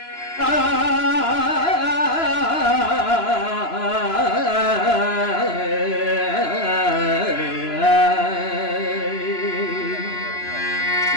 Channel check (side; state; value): right; late; 2.9 ms